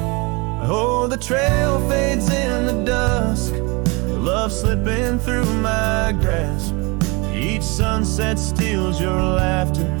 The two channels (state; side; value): quieter; left; 27.7 dB